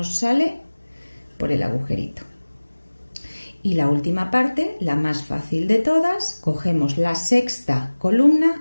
sale por el agujerito. Y la última parte, la más fácil de todas, cogemos la sexta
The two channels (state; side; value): inverted; both; correlation -1.00